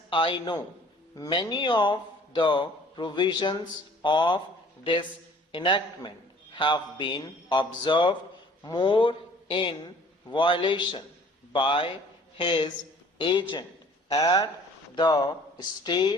I know, many of the provisions of this enactment have been observed more in violation by his agent at the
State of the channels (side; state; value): both; normal; correlation 0.53